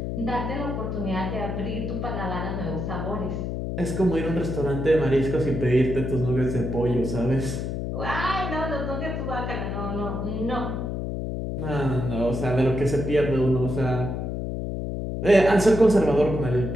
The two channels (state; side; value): noise; left; hum, 3 dB below the sound